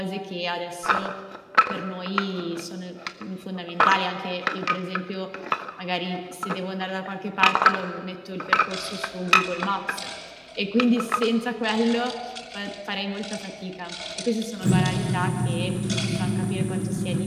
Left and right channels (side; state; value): both; identical; correlation 1.00